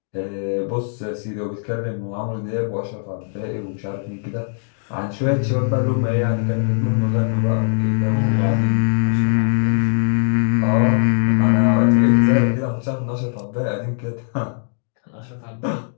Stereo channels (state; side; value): silent; right; digital silence